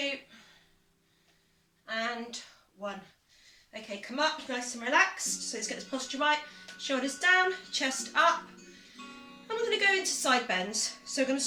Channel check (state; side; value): identical; both; correlation 1.00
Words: and 1. Okay, come up nice and relaxed. So let's get this posture right. Shoulders down, chest up. And we're going to go into side bends. So I'm going to